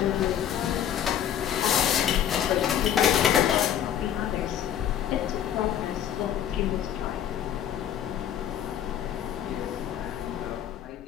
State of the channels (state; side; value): quieter; right; 10.0 dB